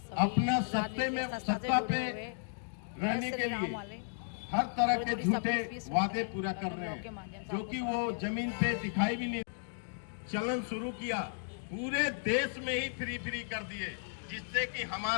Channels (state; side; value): silent; right; digital silence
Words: अपना सत्ता पे रहने के लिए हर तरह के झूठे वादे पूरा कर रहे हैं, जो कि वो जमीन पे दिखाई भी नहीं। चलन शुरू किया, पूरे देश में ही फ्री कर दिए, जिससे कि